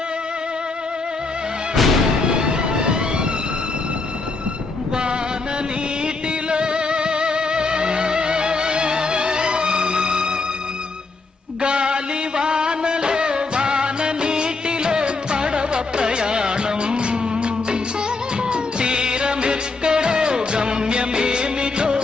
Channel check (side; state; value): right; quieter; 3.8 dB